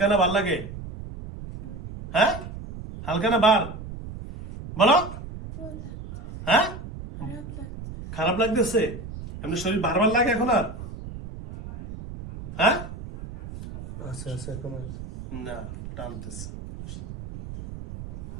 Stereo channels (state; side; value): noise; right; rumble, 11 dB below the sound